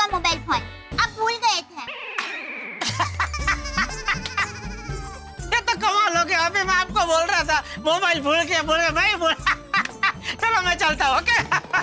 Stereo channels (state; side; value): identical; both; correlation 1.00